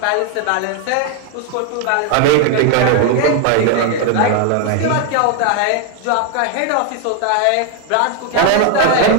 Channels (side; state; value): both; different; correlation 0.01